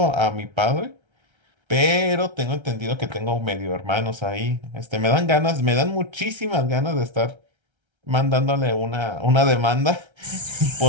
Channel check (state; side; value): late; left; 1.3 ms